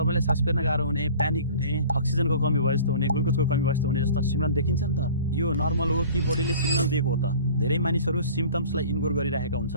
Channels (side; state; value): both; inverted; correlation -0.44